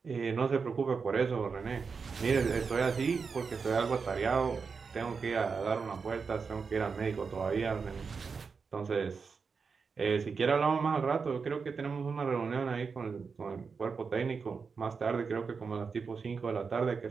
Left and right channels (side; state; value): left; quieter; 5.3 dB